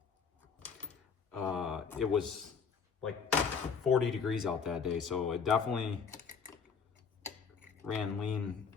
It was like 40 degrees out that day, so it definitely ran lean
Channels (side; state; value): right; quieter; 6.0 dB